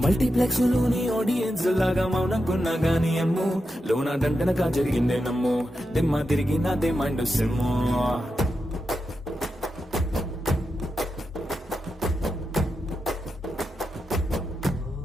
మల్టీప్లెక్స్ లోని ఆడియన్స్ లాగా మౌనంకున్నా గానీ అమ్ము లోన దండనగా జరిగిందే నమ్ము దిమ్మ తిరిగి నాదే మైండ్ సిమ్ము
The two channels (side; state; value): both; normal; correlation 0.88